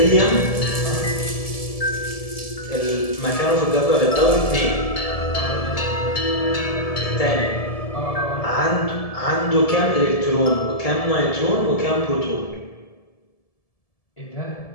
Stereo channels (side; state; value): right; late; 1.7 ms